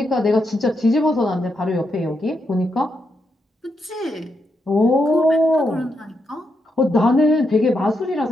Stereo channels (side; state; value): both; normal; correlation 0.82